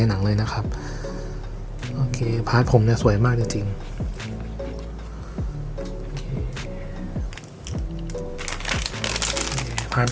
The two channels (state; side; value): identical; both; correlation 1.00